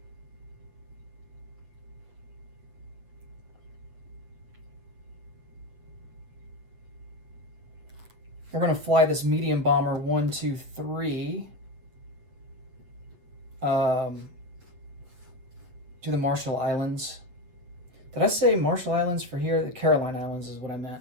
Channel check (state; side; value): late; left; 8.2 ms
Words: We're going to fly this medium bomber 1, 2, 3 to the Marshall Islands. Did I say Marshall Islands for here? The Caroline Islands is what I meant.